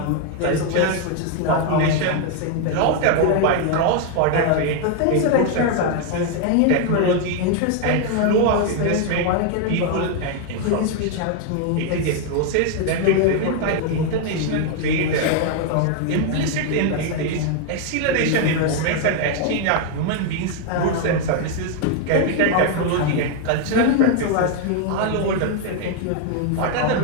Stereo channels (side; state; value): both; different; correlation 0.00